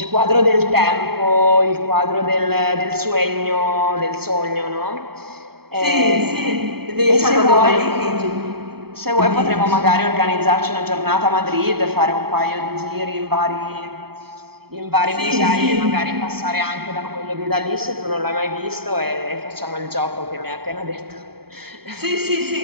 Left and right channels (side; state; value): left; late; 0.96 ms